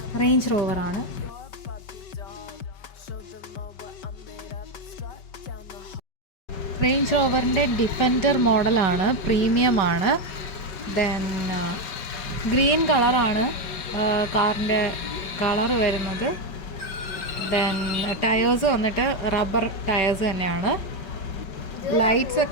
റേഞ്ച് റോവറാണ്. റേഞ്ച് റോവറിൻ്റെ ഡിഫൻഡർ മോഡലാണ്, പ്രീമിയമാണ്. ദെൻ ഗ്രീൻ കളറാണ് കാറിൻ്റെ കളറ് വരുന്നത്. ദെൻ ടയേഴ്സ് വന്നിട്ട് റബ്ബർ ടയേഴ്സ് തന്നെയാണ്. ലൈറ്റ്സ്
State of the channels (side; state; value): right; late; 5.2 ms